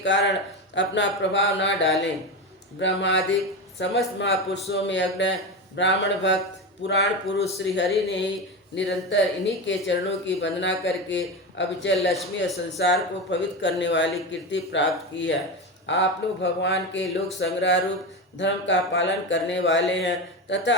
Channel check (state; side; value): normal; both; correlation 0.19